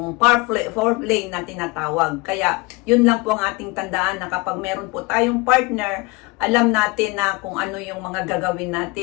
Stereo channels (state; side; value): quieter; right; 25.5 dB